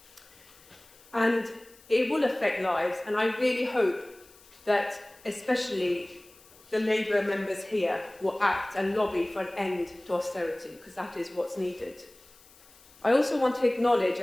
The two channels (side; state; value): left; noise; hiss, 25 dB below the sound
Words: And it will affect lives, and I really hope that especially the Labour members here will act and lobby for an end to austerity, because that is what's needed. I also want to acknowledge